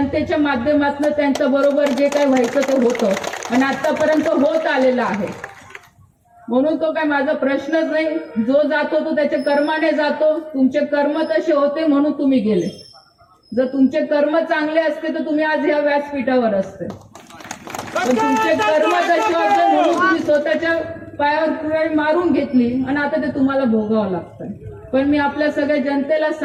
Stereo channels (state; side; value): identical; both; correlation 1.00